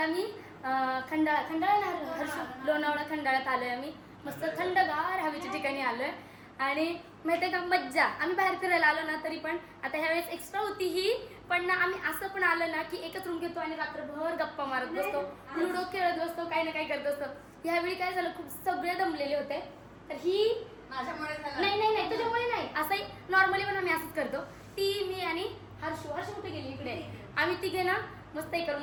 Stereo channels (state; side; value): identical; both; correlation 1.00